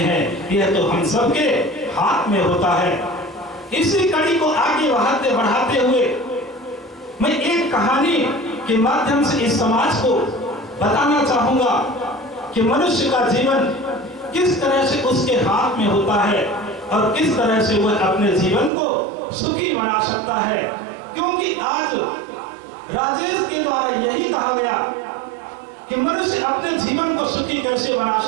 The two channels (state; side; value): drops out; left; at 18.7 s